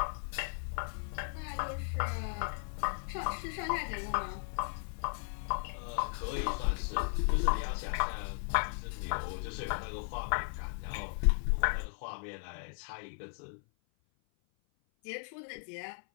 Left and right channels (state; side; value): silent; right; 54 dB below the other